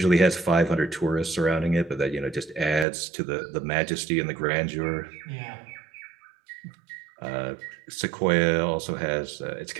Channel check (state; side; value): drops out; left; at 2.9 s